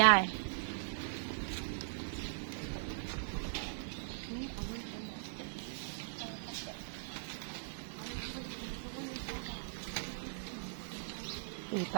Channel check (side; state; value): left; silent; digital silence